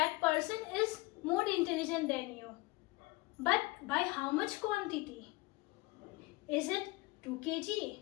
person is more intelligent than you. But by how much quantity? Is it 2 kg,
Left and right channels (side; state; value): right; quieter; 22.4 dB